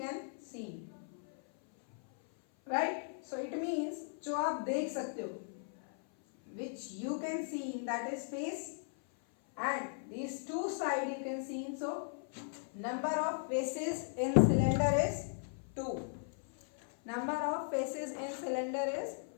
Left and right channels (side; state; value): right; silent; 53 dB below the other